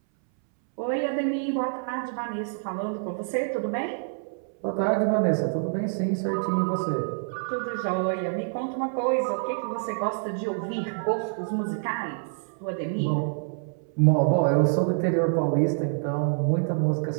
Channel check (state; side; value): silent; left; 60 dB below the other